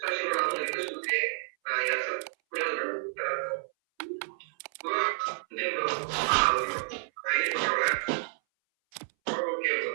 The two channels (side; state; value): left; silent; 58 dB below the other